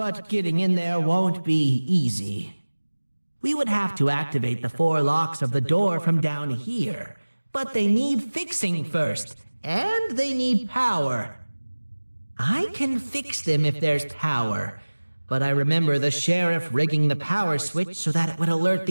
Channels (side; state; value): both; inverted; correlation -1.00